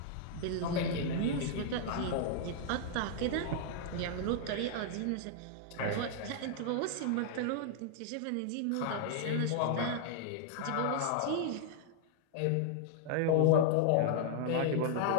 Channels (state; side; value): different; both; correlation -0.01